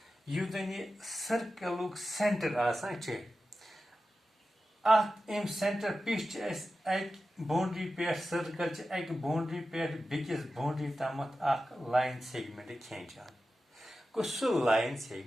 यु जन यह सर्कल सेंटर आसान अम सेंटर पिच बाउंड्री पे सर्कल अक बाउंड्री पे बेकिस बाउंड्री तम लाइन सेगमेंट खेचान गो सह लाइन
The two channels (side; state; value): both; normal; correlation 0.93